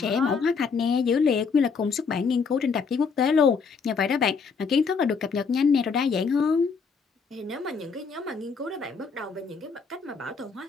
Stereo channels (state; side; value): quieter; right; 5.4 dB